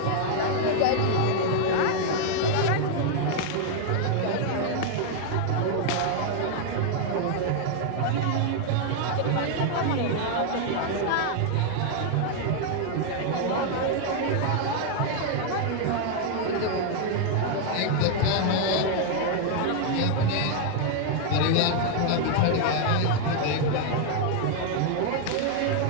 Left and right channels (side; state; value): both; different; correlation 0.00